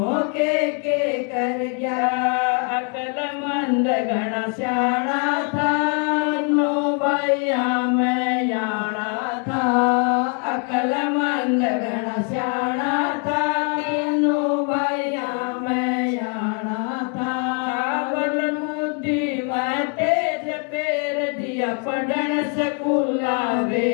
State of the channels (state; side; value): quieter; right; 37.8 dB